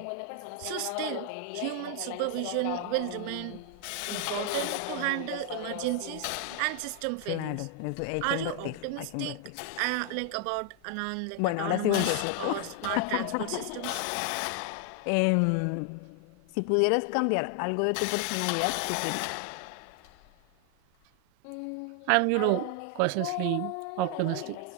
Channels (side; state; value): both; different; correlation 0.00